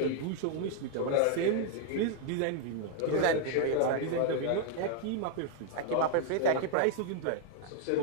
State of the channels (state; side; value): different; both; correlation 0.00